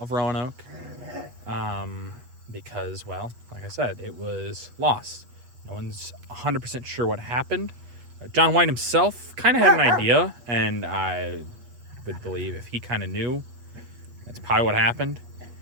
Roanoke because, well, like I said, it was lost. No one's 100% sure what happened. John White himself kind of had an idea, and I would believe if he kind of knew, that's probably what happened.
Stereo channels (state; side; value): late; left; 8.4 ms